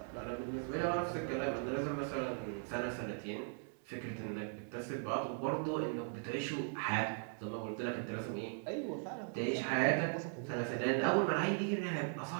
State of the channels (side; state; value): left; silent; 52 dB below the other